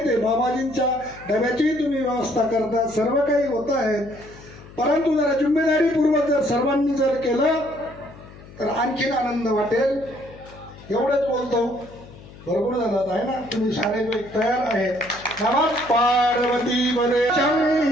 आहे. बाबाजींच्या डब्याचीही तुम्ही व्यवस्था करता, सर्व काही होत आहे. परंतु जरा जिम्मेदारीपूर्वक जर सर्वांनी जर केलं तर आणखीन आनंद वाटेल. एवढंच बोलतो. बरोबर झालं आहे ना? तुम्ही सारे तयार आहेत. नमः पार्वती पदे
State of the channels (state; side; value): noise; left; hum, 19 dB below the sound